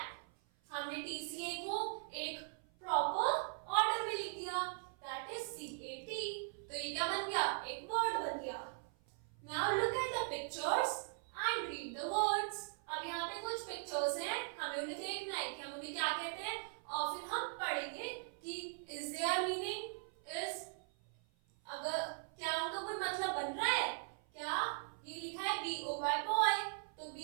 हमने TCA को एक proper order में लिख दिया, that is CAT. तो ये क्या बन गया? एक वर्ड बन गया. Now look at the pictures and read the words. अब यहाँ पे कुछ पिक्चर्स हैं, हमें उन्हें देखना है कि हम उन्हें क्या कहते हैं और फिर हम पढ़ेंगे कि is their meaning, is अगर क्या उनका कोई मतलब बन रहा है क्या. ये लिखा है BOY boy, तो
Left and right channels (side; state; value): left; silent; 51 dB below the other